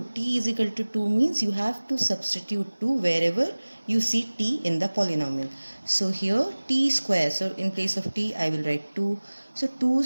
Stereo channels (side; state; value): both; inverted; correlation -1.00